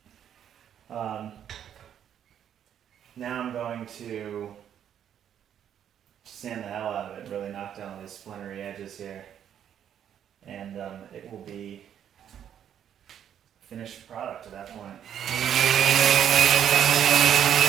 Now I'm going to sand the hell out of it, really knock down these splintery edges here, and it will be a finished product at that point.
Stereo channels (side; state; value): left; quieter; 9.5 dB